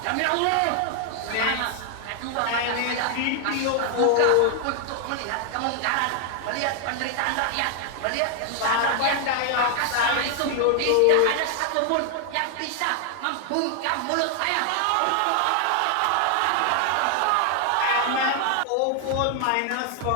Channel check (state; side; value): different; both; correlation 0.00